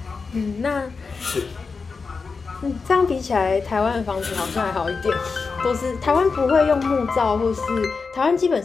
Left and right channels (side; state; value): right; quieter; 4.7 dB